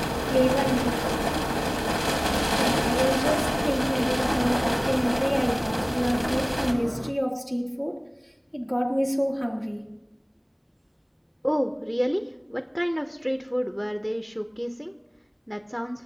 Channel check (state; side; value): identical; both; correlation 1.00